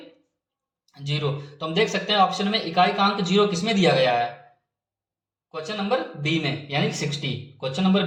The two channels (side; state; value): both; identical; correlation 1.00